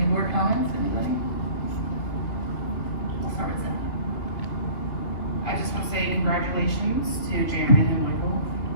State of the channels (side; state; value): right; late; 2.8 ms